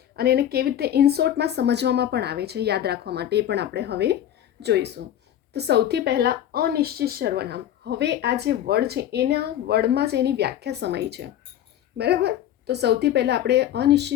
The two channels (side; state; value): right; quieter; 11.2 dB